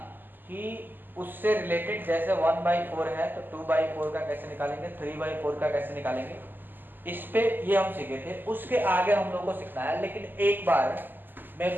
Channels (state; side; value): late; left; 0.091 ms